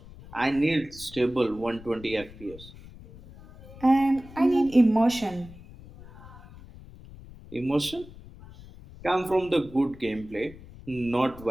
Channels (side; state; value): left; noise; rumble, 18 dB below the sound